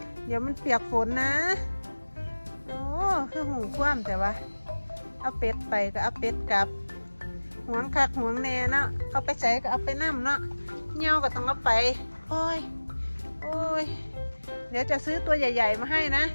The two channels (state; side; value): inverted; both; correlation -1.00